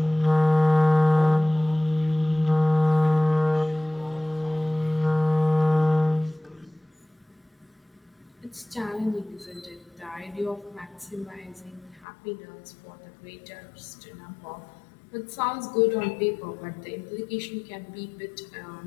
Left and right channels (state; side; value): drops out; right; at 12.1 s